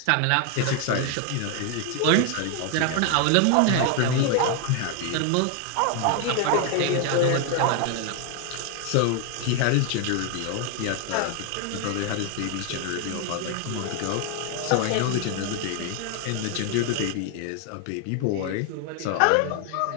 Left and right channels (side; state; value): both; different; correlation 0.01